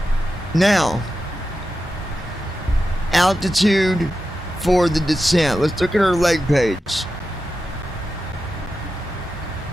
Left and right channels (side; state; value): both; normal; correlation 0.91